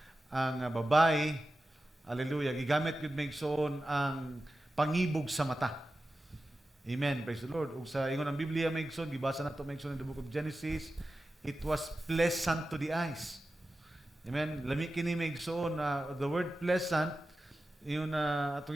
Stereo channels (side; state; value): both; normal; correlation 0.93